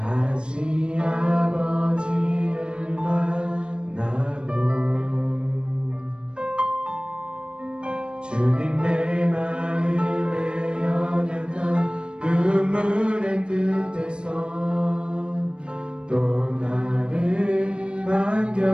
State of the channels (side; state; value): left; late; 0.054 ms